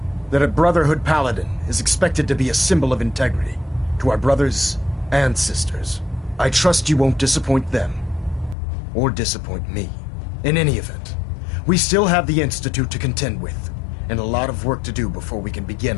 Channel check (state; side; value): drops out; right; at 8.6 s